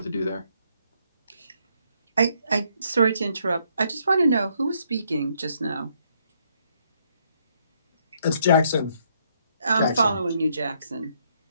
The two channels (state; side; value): inverted; both; correlation -0.71